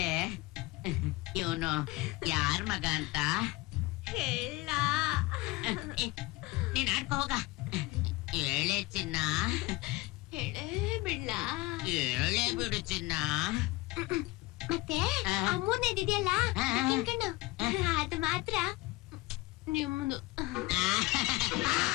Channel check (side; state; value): right; quieter; 21.2 dB